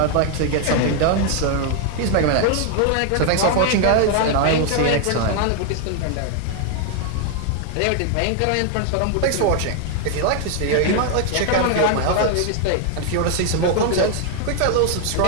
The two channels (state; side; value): different; both; correlation 0.00